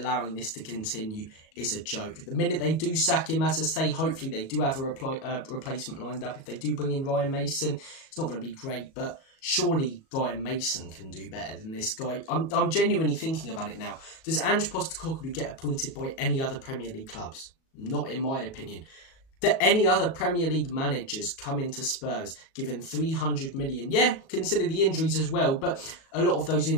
this to continue is a joke. The minute they do sack him, as I say, hopefully they do have a replacement lined up. If they do bring in Ryan Mason, it's not going to be great, but surely Ryan Mason can do better than this guy. I'm genuinely thinking about it now. Does Ange Postecoglou get appointed by any other Premier League clubs? Not in my opinion. Do any other Premier League managers come into Spurs given 300 million? Yeah, consider the injuries as well, but a lot of those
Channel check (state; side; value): late; right; 37 ms